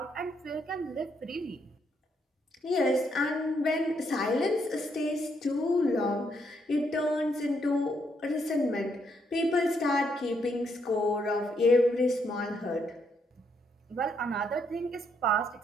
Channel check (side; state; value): both; normal; correlation 0.75